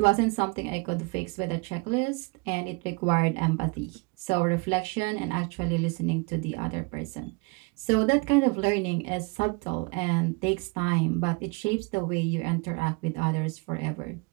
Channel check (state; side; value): quieter; left; 29.1 dB